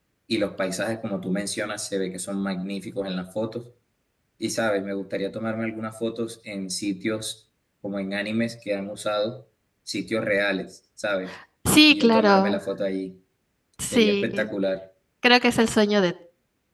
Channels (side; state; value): both; identical; correlation 1.00